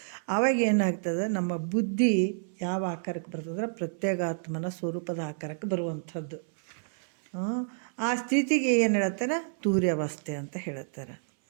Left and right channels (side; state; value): left; silent; 58 dB below the other